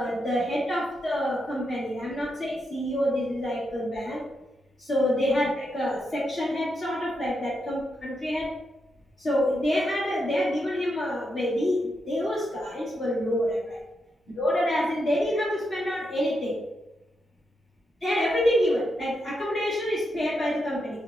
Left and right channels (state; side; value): normal; both; correlation 0.83